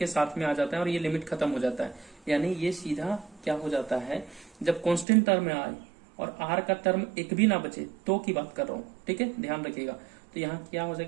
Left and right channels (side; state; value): left; drops out; at 5.1 s